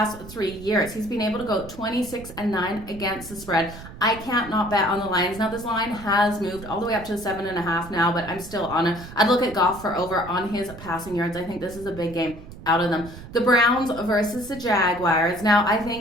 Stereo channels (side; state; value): right; noise; rumble, 15 dB below the sound